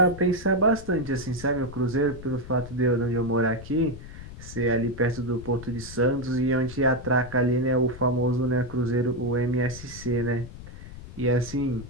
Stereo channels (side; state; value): left; noise; rumble, 14 dB below the sound